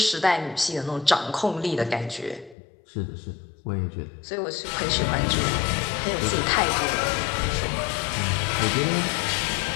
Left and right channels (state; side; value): drops out; right; at 2.6 s